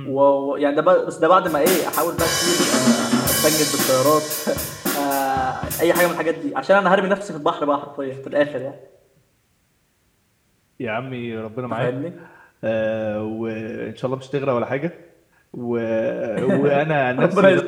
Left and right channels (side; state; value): both; identical; correlation 1.00